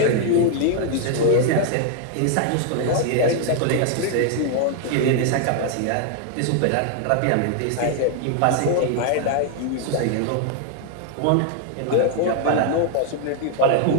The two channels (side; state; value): both; different; correlation 0.00